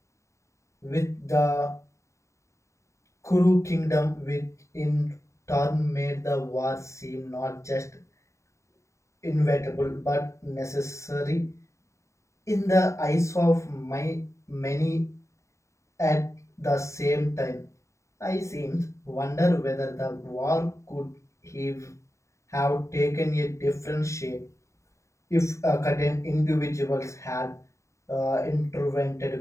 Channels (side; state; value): right; late; 0.14 ms